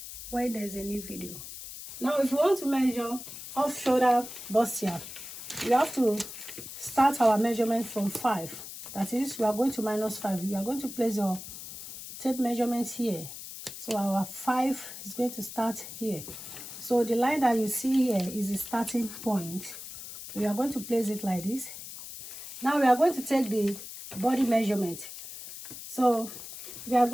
when there's a new video. Now, if you want to measure off shoulder bustier, you have to start our measurement from 5. That is, we are going to minus 5. You are going to place your tape measurement here. So our 5 is going to start here. So the line that you see here is the starting point. So we are going to place it like this. Now we are going to take the body measurement. So we are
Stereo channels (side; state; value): left; noise; hiss, 11 dB below the sound